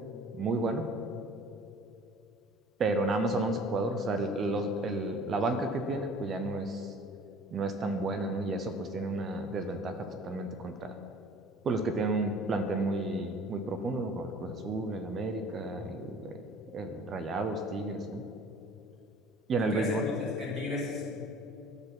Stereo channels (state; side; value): normal; both; correlation 0.49